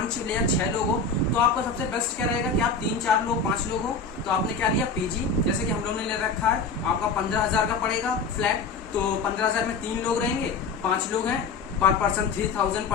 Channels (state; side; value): quieter; right; 4.6 dB